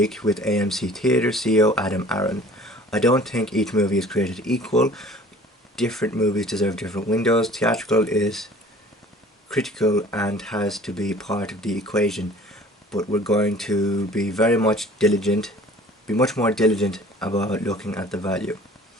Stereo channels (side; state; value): both; normal; correlation 0.48